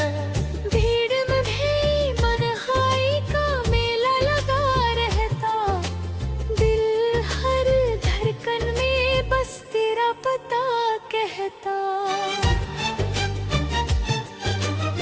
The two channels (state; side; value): identical; both; correlation 1.00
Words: भीड़ में भी मनहाई का मेला लगा रहता, दिल हर धड़कन में बस तेरा पता कहता।